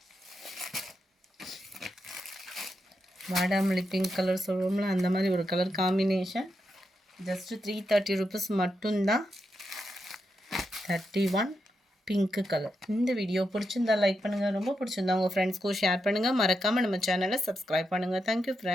வாடாமல்லி பிங்க் கலர் சொல்லுவோம்ல அந்த மாதிரி ஒரு கலர் காம்பினேஷன். ஜஸ்ட்டு 330 ருபீஸ் மட்டும்தான். 31 பிங்க் கலர். இந்த வீடியோ பிடிச்சிருந்தா லைக் பண்ணுங்கள். ரொம்ப பிடிச்சிருந்தா உங்கள் ஃப்ரெண்ட்ஸ்க்கும் ஷேர் பண்ணுங்கள். மறக்காமல் நம்ம சேனலை சப்ஸ்கிரைப் பண்ணுங்கள். Thank you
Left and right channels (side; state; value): both; normal; correlation 0.85